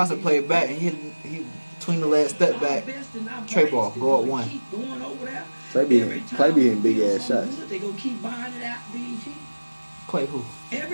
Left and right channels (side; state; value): both; inverted; correlation -1.00